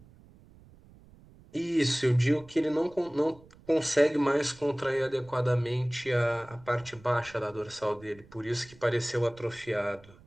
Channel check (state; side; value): noise; right; rumble, 24 dB below the sound